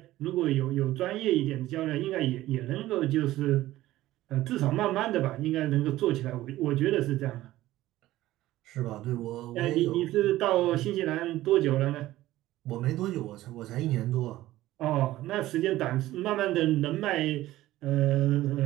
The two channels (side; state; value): left; quieter; 15.7 dB